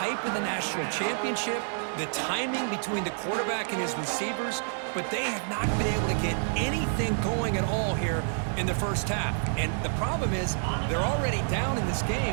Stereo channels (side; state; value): left; silent; digital silence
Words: of the national championship, the timing between the quarterback and his receivers, but they have not been able to get anything going at all here in the first half. And the problem is they're already down in this